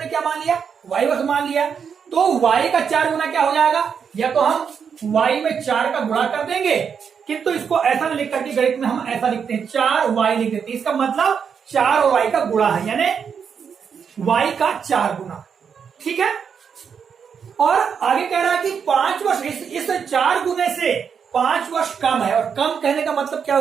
क्या मान लिया, y वर्ष मान लिया, तो y का 4 गुना क्या हो जाएगा, या तो हम y में 4 का गुणा कर देंगे, किंतु इसको ऐसा नहीं लिख करके गणित में हम ऐसा लिखते हैं 4y लिख देते हैं। इसका मतलब 4 और y का गुणा है, यानी y का 4 गुना। ठीक है, और आगे कह रहा है कि 5 वर्ष, इस 4 गुने से 5 वर्ष कम है। और कम कहने का मतलब क्या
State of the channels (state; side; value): quieter; left; 6.9 dB